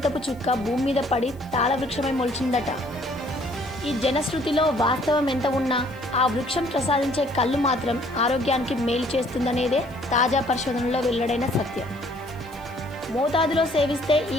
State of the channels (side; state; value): left; noise; hiss, 28 dB below the sound